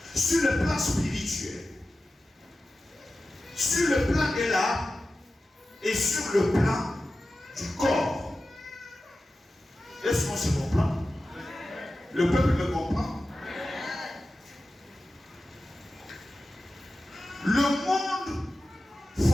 Sur le plan spirituel, sur le plan de l'âme et sur le plan du corps. Est-ce qu'on se comprend? Le peuple me comprend? Le monde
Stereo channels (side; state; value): both; normal; correlation 0.94